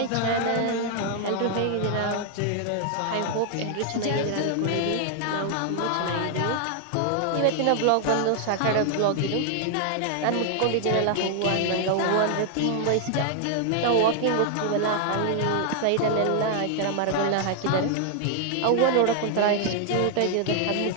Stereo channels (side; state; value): both; different; correlation 0.00